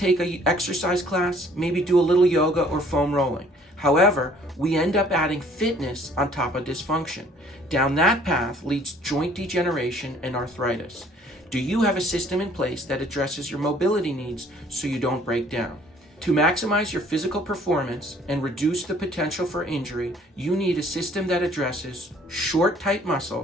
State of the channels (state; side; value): normal; both; correlation 0.58